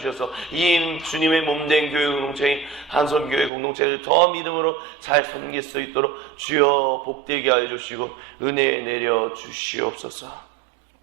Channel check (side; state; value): left; drops out; at 3.5 s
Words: 이 주님의 몸된 교회 공동체인 한손교회 공동체를 더 믿음으로 잘 섬길 수 있도록 주여 복되게 하여 주시고 은혜 내려 주시옵소서.